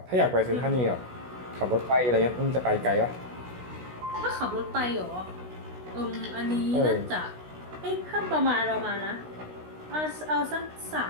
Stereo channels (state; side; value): late; left; 16 ms